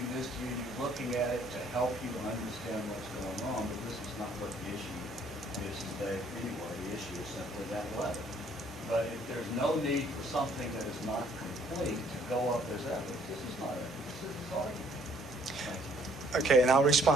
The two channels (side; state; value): both; normal; correlation 0.62